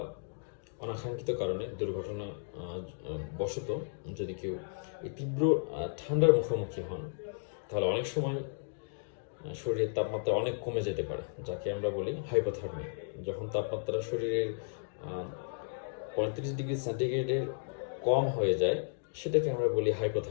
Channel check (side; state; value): right; silent; digital silence